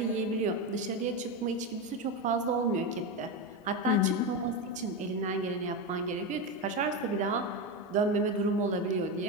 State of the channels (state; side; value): normal; both; correlation 0.14